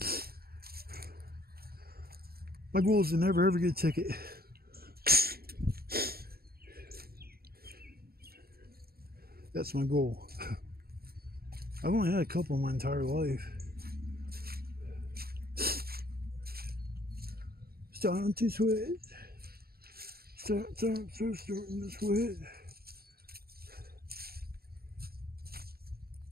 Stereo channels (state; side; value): late; left; 0.45 ms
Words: My goal is to never ever get a ticket. That's my goal. I've only had a couple in my entire life. Starting to sweat. Starting to sweat.